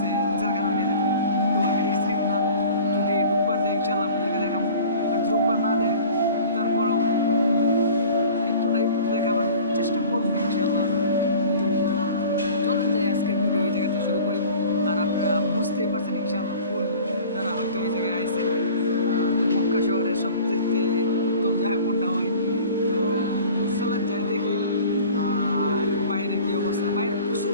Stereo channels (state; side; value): inverted; both; correlation -0.44